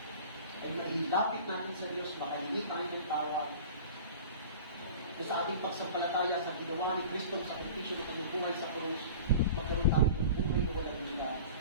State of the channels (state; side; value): inverted; both; correlation -0.38